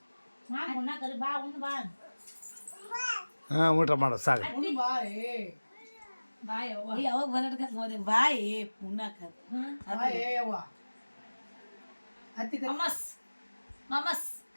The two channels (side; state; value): both; inverted; correlation -1.00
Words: ಮಾಮ ಉಣ್ಣ ಕರಿ ಬಾ ಉಣ್ಣ ಬಾ ಹಾಂ ಊಟ ಮಾಡೋ ಸಾಕು. ಬಾಯ್ ಅವ್ವ ಯಾವಾಗ ಬಂದಡ್ಕ ನೋಡಿ ಬಾಯಿ ಉಣ್ಣಾಕ ಮಮಸ್ ಮಮಸ್